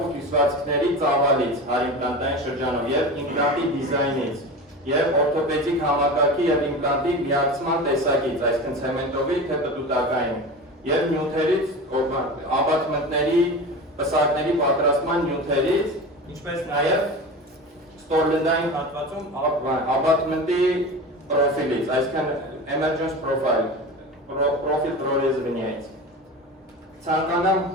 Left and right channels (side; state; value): both; normal; correlation 0.30